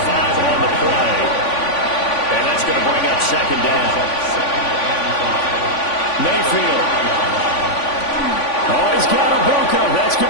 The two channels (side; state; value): right; late; 3.5 ms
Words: on the play. And that's going to bring up second down. Mayfield. Oh, he's got a Buka. That's